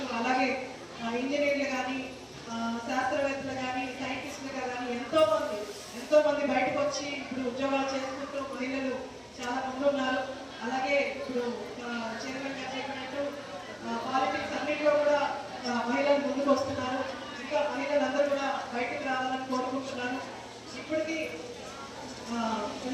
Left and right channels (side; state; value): both; identical; correlation 1.00